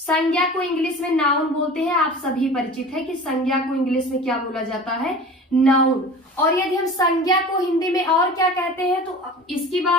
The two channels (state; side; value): normal; both; correlation 0.39